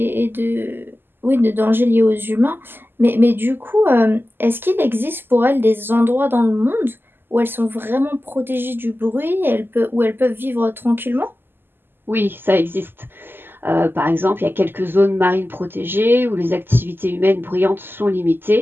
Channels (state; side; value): late; left; 0.098 ms